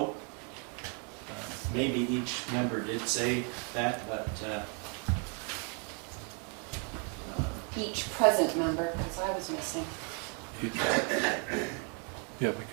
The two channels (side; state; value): left; quieter; 38.0 dB